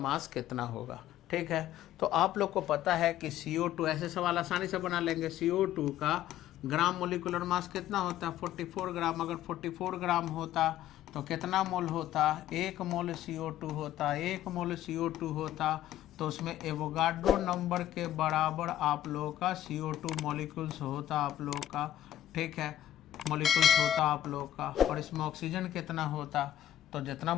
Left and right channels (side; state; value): right; quieter; 12.3 dB